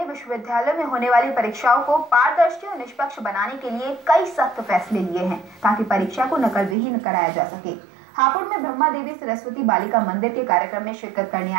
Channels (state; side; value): drops out; left; at 6.8 s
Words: विश्वविद्यालय में होने वाली परीक्षाओं को पारदर्शी और निष्पक्ष बनाने के लिए कई सख्त फैसले लिए हैं ताकि परीक्षा को नकल विहीन कराया जा सके। हापुड़ में ब्रह्मा देवी सरस्वती बालिका मंदिर के कार्यक्रम में शिरकत करने